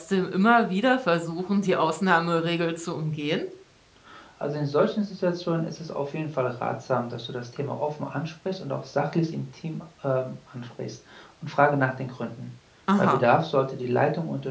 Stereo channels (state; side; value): identical; both; correlation 1.00